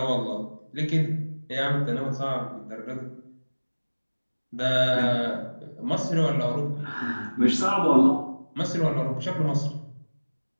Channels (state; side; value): inverted; both; correlation -1.00